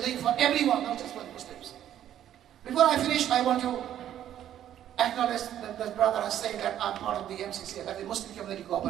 for everyone, not just for the Muslims. Before I finish, I want to acknowledge that the brother has said that I'm part of the MCCA, that the Muslim Community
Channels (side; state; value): left; quieter; 11.1 dB